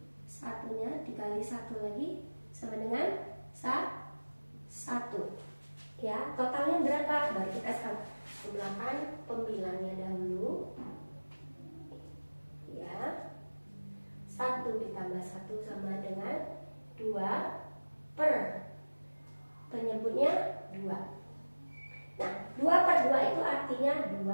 Satunya dikali 1 lagi sama dengan 1. Ya, totalnya berapa? Baru kita jumlahkan pembilangnya dahulu. Ya. 1 ditambah 1 sama dengan 2 per penyebutnya 2. Nah, 2 per 2 itu artinya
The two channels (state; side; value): inverted; both; correlation -1.00